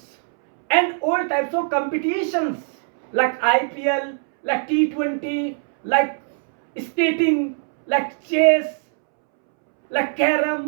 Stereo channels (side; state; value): left; silent; 65 dB below the other